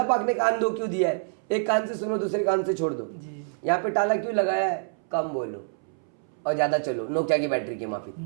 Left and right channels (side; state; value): left; silent; 60 dB below the other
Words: पाक ने कान 2 क्यों दिया है, एक कान से सुनो दूसरे कान से छोड़ दो। यहाँ पे ताला क्यों लगाया है, कम बोलो और ज्यादा चलो, नोकिया की बैटरी की माफी,